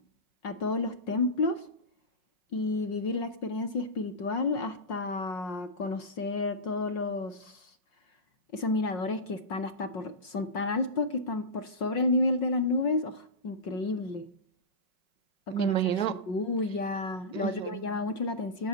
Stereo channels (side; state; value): right; late; 5.5 ms